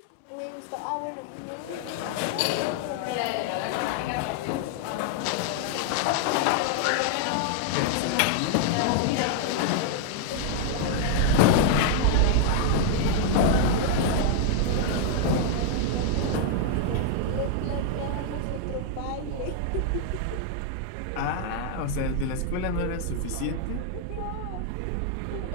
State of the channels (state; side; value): different; both; correlation 0.00